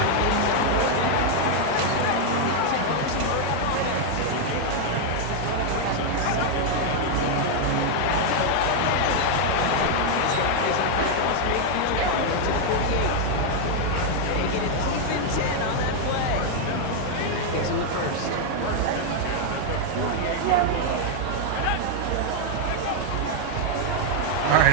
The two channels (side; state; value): both; different; correlation 0.00